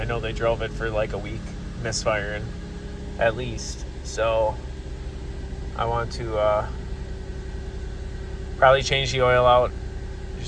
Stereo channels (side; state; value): both; identical; correlation 1.00